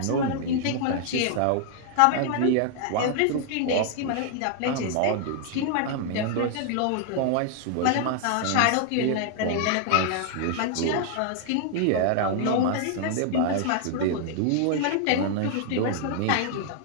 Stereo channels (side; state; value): both; different; correlation 0.00